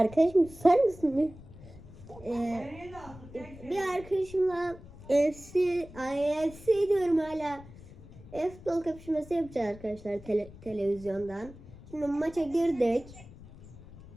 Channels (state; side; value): noise; left; rumble, 18 dB below the sound